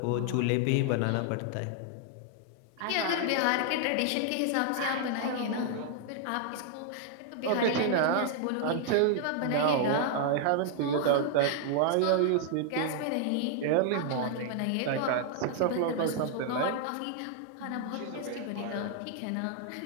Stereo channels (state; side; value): different; both; correlation 0.00